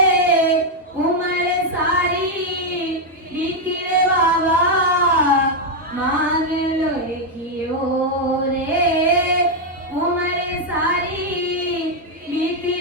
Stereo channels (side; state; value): both; normal; correlation 0.01